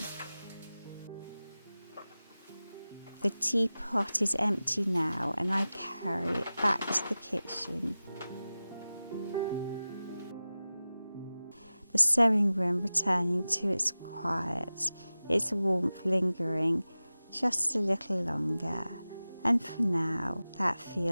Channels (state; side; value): inverted; both; correlation -0.96